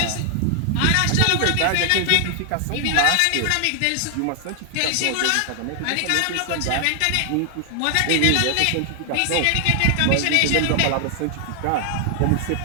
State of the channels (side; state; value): both; different; correlation 0.00